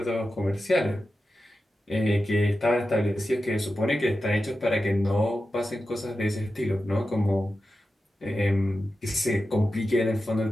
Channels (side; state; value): both; normal; correlation 0.92